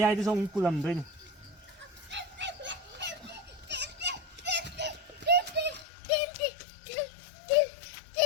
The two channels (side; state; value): right; drops out; at 5.9 s